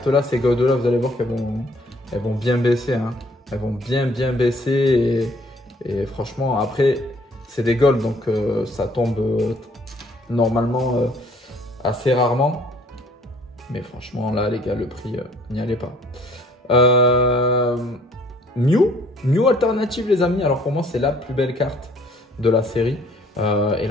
ces Gold-là, vous allez voir qu'elles vont bien baisser. Hein. Elles vont bien baisser. Et franchement, après, c'est des Gold, donc ça tombe normalement assez rarement. Mais franchement, là, les gars, le prix, n'y allez pas. Mew alternative, les amis. Alors, pour moi, c'est la plus belle carte de la série. Et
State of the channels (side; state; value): both; normal; correlation 0.59